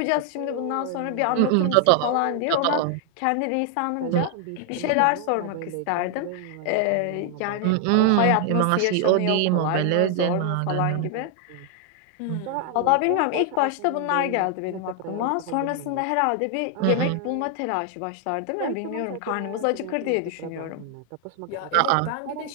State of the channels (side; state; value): both; different; correlation 0.00